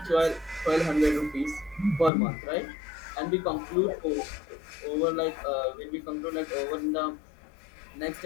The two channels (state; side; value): drops out; right; at 2.1 s